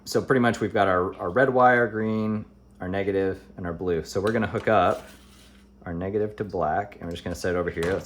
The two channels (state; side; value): identical; both; correlation 1.00